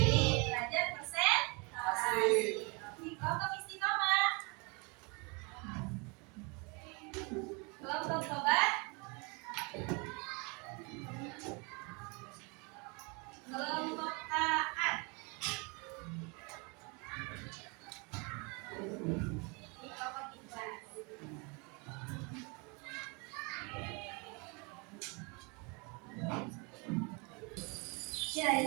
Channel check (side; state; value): left; quieter; 31.1 dB